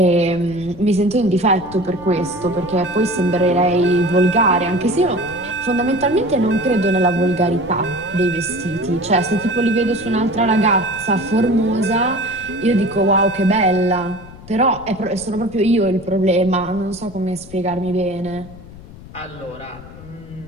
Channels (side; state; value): left; noise; rumble, 18 dB below the sound